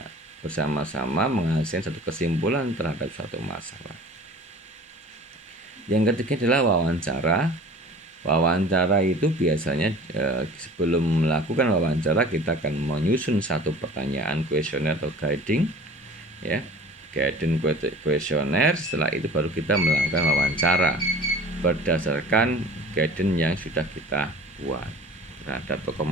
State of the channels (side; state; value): both; normal; correlation 0.44